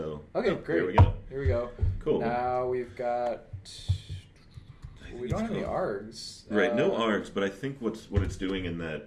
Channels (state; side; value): identical; both; correlation 1.00